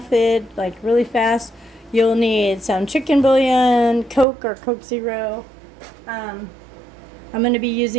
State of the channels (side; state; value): left; drops out; at 4.2 s